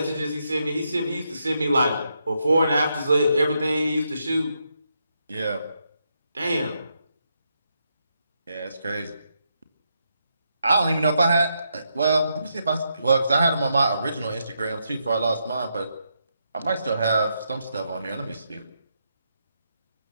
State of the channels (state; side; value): inverted; both; correlation -0.81